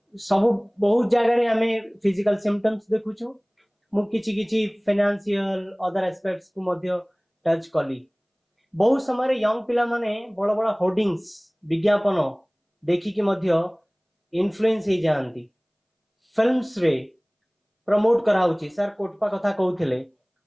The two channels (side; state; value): both; identical; correlation 1.00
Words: सब बहुत जगह रे हमें फिजिकल सिम्पटम्स देखुछु मु किछि फाइनेंशियल अदर एस्पेक्ट्स को मध्य टच कली बहुत समय यंग पिला माने बड़ बड़ होर्डिंग्स विज्ञापन देखि कि मध्य इन्फ्लुएंस हो जाती फिल्म्स रे प्रमोट कराउची सर कोटपा कथा कहउथिले